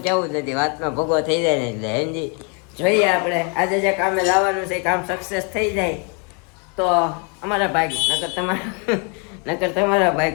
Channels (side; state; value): right; quieter; 35.9 dB